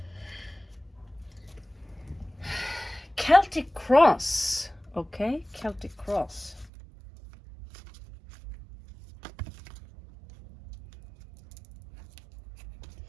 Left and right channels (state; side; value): drops out; left; at 6.7 s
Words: Celtic cross. Okay, Celtic cross.